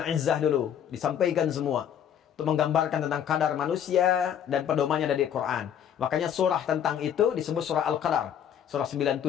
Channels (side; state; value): right; quieter; 9.1 dB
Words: Izzah dulu, disampaikan semua untuk menggambarkan tentang kadar manusia dan pedomannya dari Quran. Makanya surah tentang itu disebut surah Al-Qadar, surah